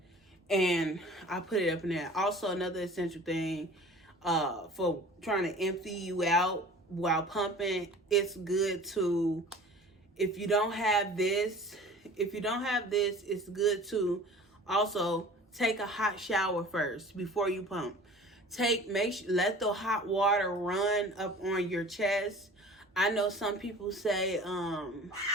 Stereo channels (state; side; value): normal; both; correlation 0.44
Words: And I put it up in there. Also, another essential thing for trying to empty you out while pumping, it's good to, if you don't have this, it's good to also take a hot shower first before you pump. Let the hot water run up on your chest. I know some people say